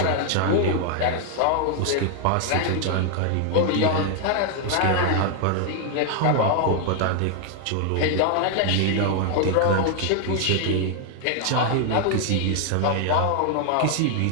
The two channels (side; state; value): both; different; correlation 0.00